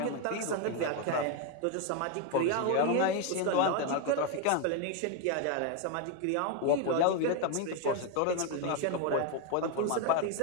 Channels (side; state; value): both; different; correlation 0.01